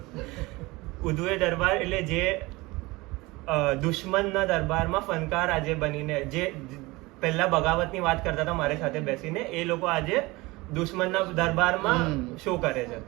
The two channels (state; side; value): quieter; left; 22.2 dB